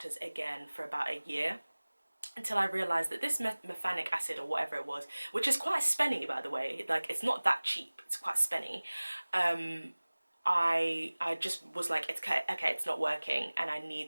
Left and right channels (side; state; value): both; inverted; correlation -1.00